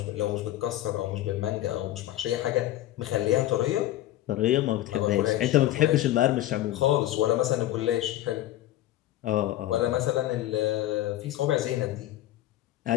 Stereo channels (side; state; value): right; quieter; 14.2 dB